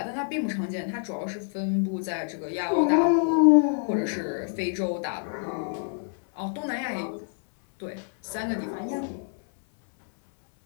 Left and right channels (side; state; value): right; silent; 60 dB below the other